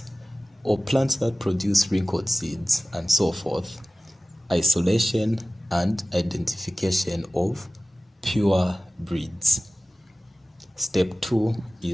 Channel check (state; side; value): normal; both; correlation 0.97